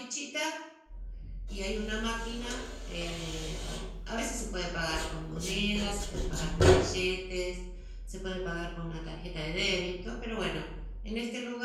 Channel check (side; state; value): both; identical; correlation 1.00